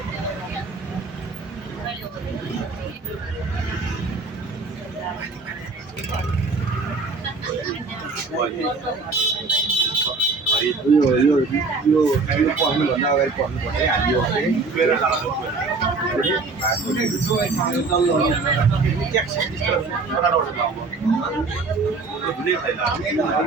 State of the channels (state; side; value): quieter; left; 4.0 dB